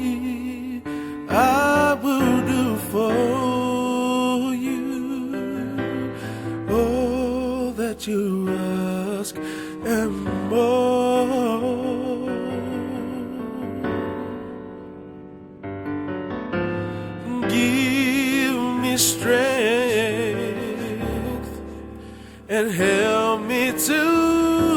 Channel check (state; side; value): identical; both; correlation 1.00